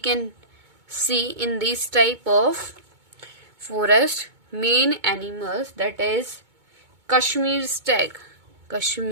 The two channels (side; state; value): left; late; 2.2 ms